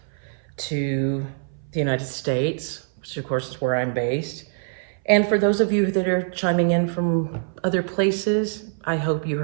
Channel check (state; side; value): silent; left; 59 dB below the other